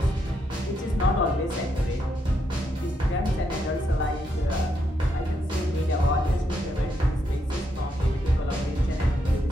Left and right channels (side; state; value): both; normal; correlation 0.79